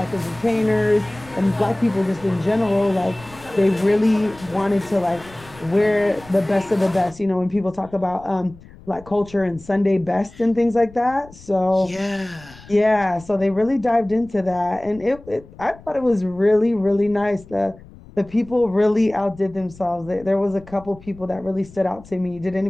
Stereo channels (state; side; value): noise; left; rumble, 21 dB below the sound